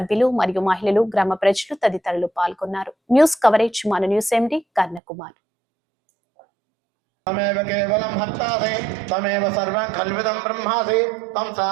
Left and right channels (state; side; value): drops out; left; at 5.0 s